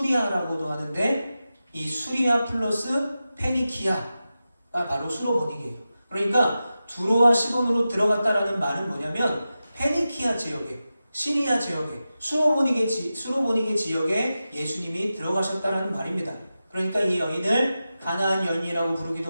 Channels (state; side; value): inverted; both; correlation -0.93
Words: 하는데 이 수리아 플러스 페니키아가 바로 수로보니게예요. 그러니까 두로와 시돈으로 들어갔다라는 말은 뭐냐면 페니키아 지역에, 시리아 지역에, 수로보니게 지역에 예수님이 들어가셨다라는 말입니다. 그러니까 이 여인을 가나안 여인이라고